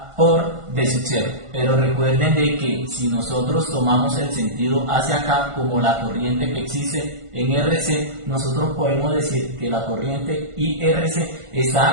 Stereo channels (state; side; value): late; left; 1.5 ms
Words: por V sub 0. Pero recuerden de que si nosotros tomamos el sentido hacia acá como la corriente que existe en RC, nosotros podemos decir que la corriente IRC